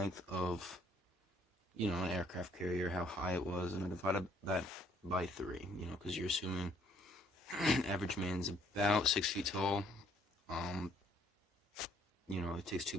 of an aircraft carrier, how high it was, and I divided that by 3, because you're assuming average man's about 6 feet tall. It takes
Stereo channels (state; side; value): normal; both; correlation 0.64